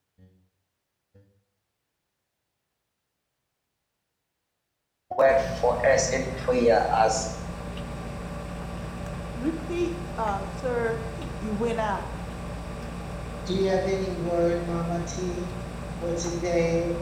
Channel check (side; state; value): both; identical; correlation 1.00